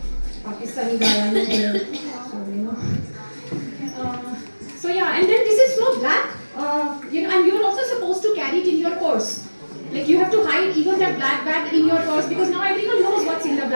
Pakistani guy, I'm here. So yeah, and then this is so black. And you're also supposed to carry it in your purse. Like you have to hide even that black bag in your purse because now everyone knows what's in the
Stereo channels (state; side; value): inverted; both; correlation -1.00